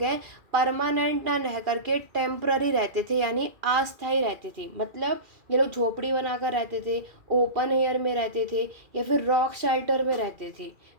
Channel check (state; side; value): late; left; 2.4 ms